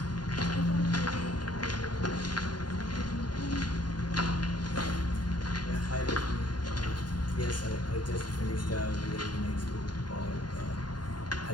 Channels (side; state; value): right; late; 0.70 ms